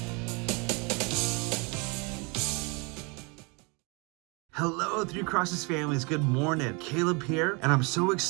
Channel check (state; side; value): quieter; left; 30.2 dB